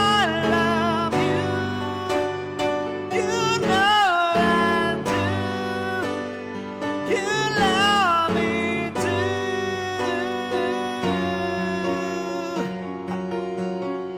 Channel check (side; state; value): both; identical; correlation 1.00